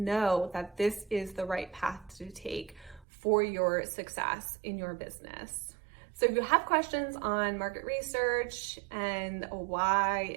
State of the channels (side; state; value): left; drops out; at 3.1 s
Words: that this is the right path to take for your success in your business. So if you have questions on market research and why